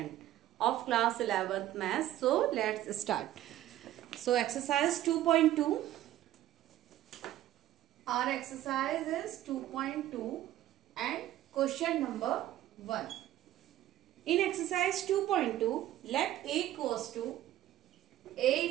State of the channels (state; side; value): quieter; left; 13.5 dB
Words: of class 11th math. So let's start. So exercise 2.2, our exercise is 2.2 and question number 1. In exercise 2.2, let A equals to A